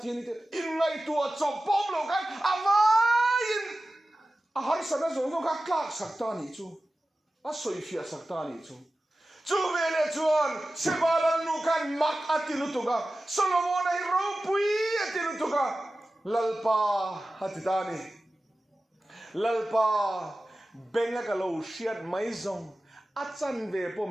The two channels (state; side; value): normal; both; correlation 0.95